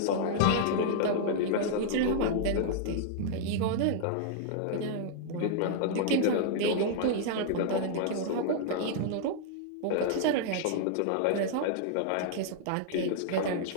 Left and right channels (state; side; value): different; both; correlation -0.01